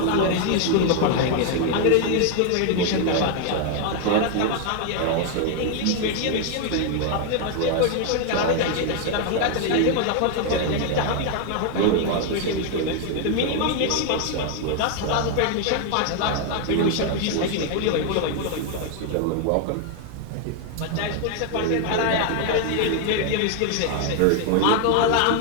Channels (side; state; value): both; different; correlation 0.01